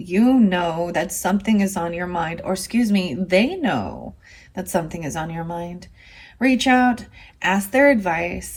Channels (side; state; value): both; identical; correlation 1.00